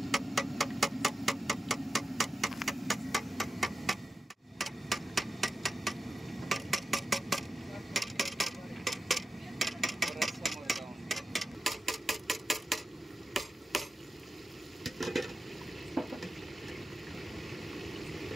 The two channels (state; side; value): normal; both; correlation 0.92